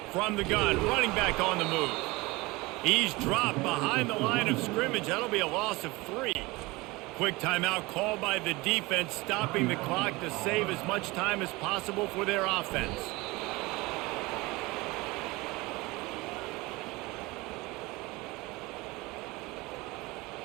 From the gun, running back on the move. He's dropped behind the line of scrimmage. That'll be a loss of 3. Quick timeout called by the defense, stopping the clock to save as much time as possible for their offense.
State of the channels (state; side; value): quieter; left; 22.6 dB